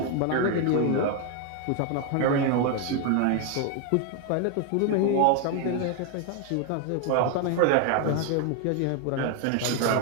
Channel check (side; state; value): both; different; correlation 0.01